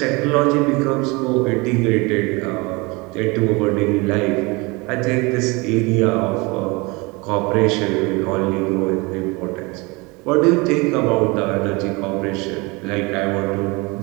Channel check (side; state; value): left; quieter; 25.8 dB